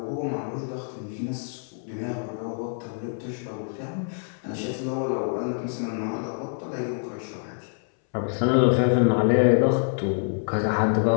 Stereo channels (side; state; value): right; silent; 61 dB below the other